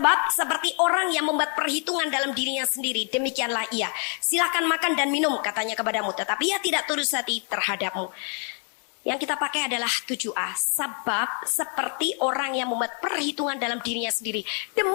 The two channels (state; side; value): quieter; right; 39.8 dB